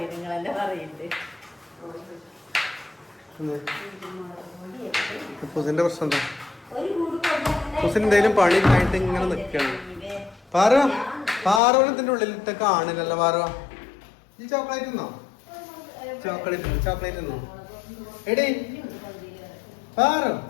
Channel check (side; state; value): right; drops out; at 11.6 s